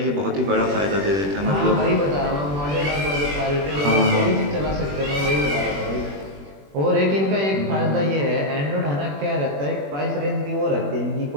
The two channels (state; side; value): late; left; 21 ms